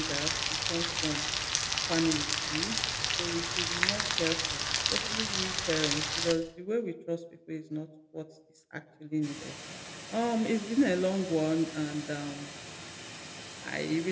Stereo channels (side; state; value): both; identical; correlation 1.00